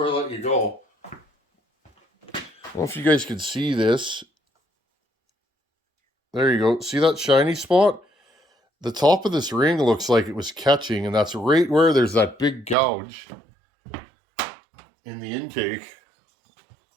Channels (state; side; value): drops out; left; at 12.8 s